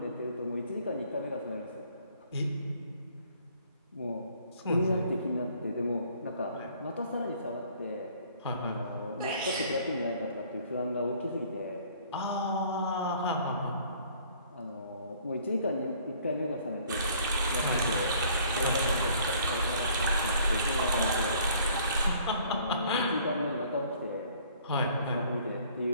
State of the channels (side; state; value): both; inverted; correlation -0.57